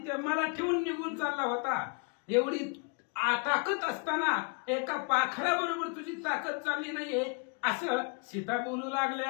मला ठेवून निघून चालला होता. एवढी ताकद असताना एका पाखरा बरोबर तुझी ताकद चालली नाहीये असं सीता बोलू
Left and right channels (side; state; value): right; quieter; 36.0 dB